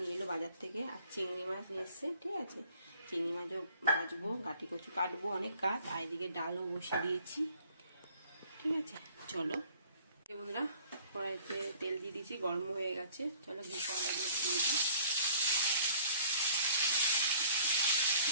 নিয়ে এলো বাজার থেকে। আর চিংড়ি মাছ নিয়ে এসছে, ঠিক আছে? চিংড়ি মাছও ভাজবো, গাটি কচু কাটবো, অনেক কাজ। আর এদিকে ডালও বসিয়ে দিয়েছি, ঠিক আছে? চলো বন্ধুরা, কড়াইতে তেল দিয়ে দিয়েছি, গরম হয়ে গেছে। চলো ঘি কড়াইগুলো দিয়ে দিই।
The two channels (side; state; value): both; inverted; correlation -0.55